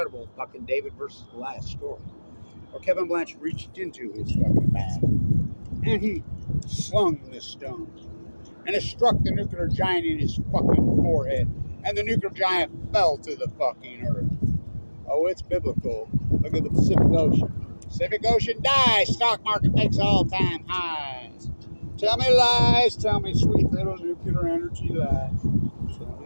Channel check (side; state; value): both; inverted; correlation -1.00